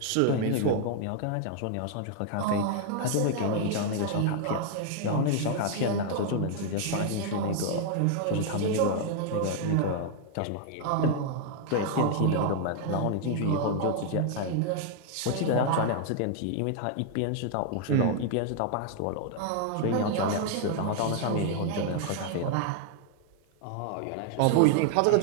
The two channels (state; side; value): different; both; correlation 0.00